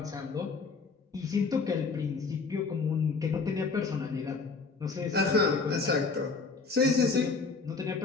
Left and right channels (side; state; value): right; quieter; 4.5 dB